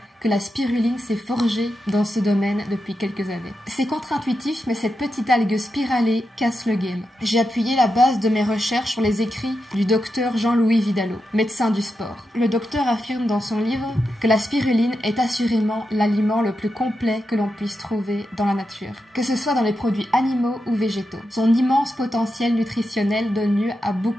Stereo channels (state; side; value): normal; both; correlation 0.88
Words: que la spiruline s'est forgée dans ce domaine depuis quelques années. C'est contre-intuitif, mais cette petite algue spiralée casse le game. J'ai appuyé la base de mes recherches sur les écrits du docteur Jean-Louis Vidalot, médecin du sport. Le docteur affirme dans son livre que la spiruline est assurément l'aliment le plus complet que l'on puisse trouver dans la nature, que ce soit dans les produits animaux ou végétaux. Son immense potentiel nutritionnel donne lieu à